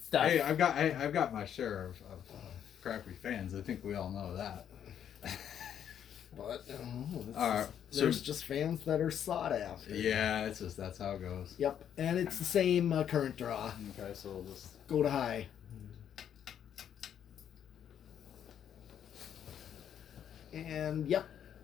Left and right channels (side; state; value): right; quieter; 9.3 dB